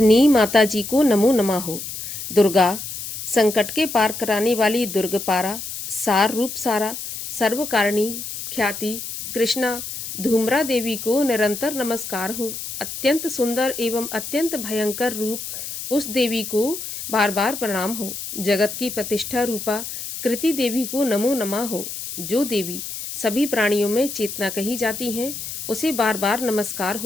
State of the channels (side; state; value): left; noise; hiss, 8 dB below the sound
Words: माता जी को नमो नमः हो। दुर्गा संकट के पार कराने वाली दुर्गपारा, सार रूप सारा, सर्वकारिणी ख्याति कृष्णा धूम्रा देवी को निरंतर नमस्कार हो। अत्यंत सुंदर एवं अत्यंत भयंकर रूप उस देवी को बार बार प्रणाम हो। जगत की प्रतिष्ठा रूपा कृति देवी को नमो नमः हो। जो देवी सभी प्राणियों में चेतना कही जाती हैं, उसे बार बार नमस्कार